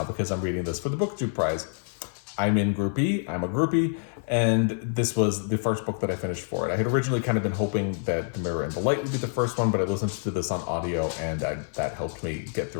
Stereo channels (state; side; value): silent; right; 56 dB below the other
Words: because I'm reading this for the BookTube Prize. I'm in Group E, I'm a groupie, and this was the first book that I finished for it. I had originally kind of been hoping that The Mirror and the Light would be the first one, but I listened to this on audio, and that helped me get